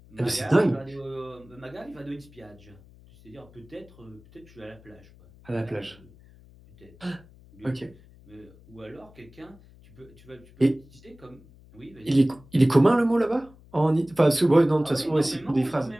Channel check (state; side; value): noise; left; hum, 24 dB below the sound